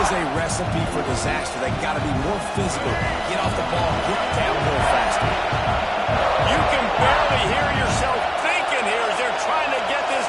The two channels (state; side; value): identical; both; correlation 1.00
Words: a recipe for disaster. They got to be more physical, get off the ball, get downhill faster. You can barely hear yourself thinking here as they're trying to get